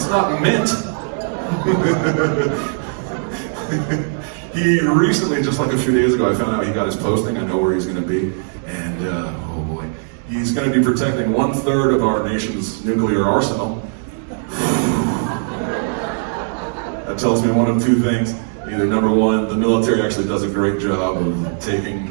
not mint. He recently, just like a few days ago, I found out he got his posting. I know where he's going to be. And, oh boy, he's going to be protecting 1/3 of our nation's nuclear arsenal. That tells me one of two things. Either number one, the military actually does a great job of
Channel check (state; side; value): silent; left; 65 dB below the other